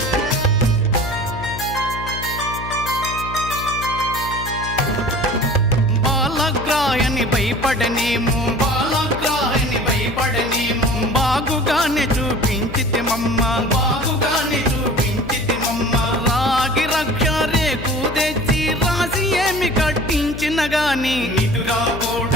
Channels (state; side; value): noise; left; hum, 10 dB below the sound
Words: బాలగ్రాయని భయపడనేమో బాగుగానే చూపించితిమమ్మ రాగి రక్ష రేకు తెచ్చి రాసి ఏమి కట్టించిన గాని